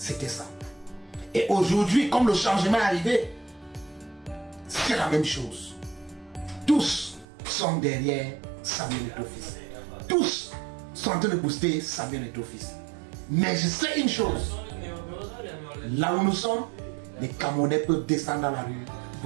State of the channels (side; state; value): left; drops out; at 7.2 s